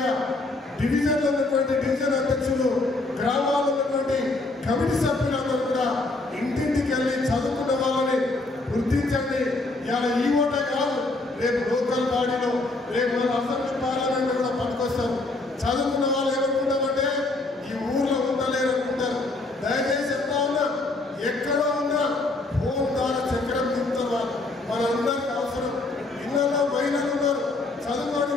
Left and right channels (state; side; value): quieter; right; 3.1 dB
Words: డివిజన్లో ఉన్నటువంటి డివిజన్ అధ్యక్షులు, గ్రామాల్లో ఉన్నటువంటి కమిటీ సభ్యులందరూ కూడా ఇంటింటికి వెళ్ళి చదువుకున్న వాళ్ళని గుర్తించండి. ఇలా ఈ ఓటే కాదు, రేపు లోకల్ బాడీలో, రేపు అసెంబ్లీ పార్లమెంట్ కూడా పట్టుకొస్తారు. చదువుకున్న వాళ్ళు ఏమనుకుంటామంటే ఈ ఊర్లో ఉండలేరు అనుకుంటారు. దయచేసి చెప్తా ఉన్నా, ఎక్కడో ఉన్నా ఫోన్ ద్వారా చక్రం తింటారు వాళ్ళు. మనందరికీ అవసరం. ఇళ్ళలో మహిళలు ఉన్నారు, చదువుకొని